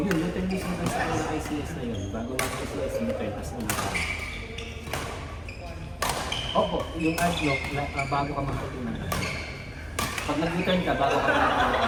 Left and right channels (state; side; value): identical; both; correlation 1.00